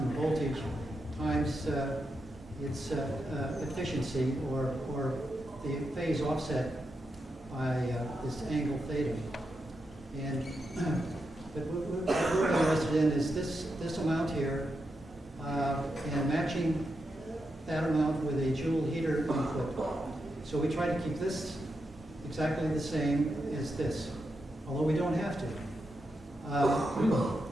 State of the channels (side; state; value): both; normal; correlation 0.85